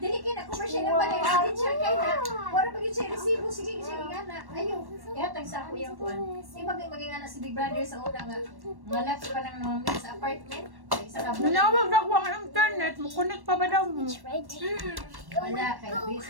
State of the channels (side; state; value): left; late; 1.1 ms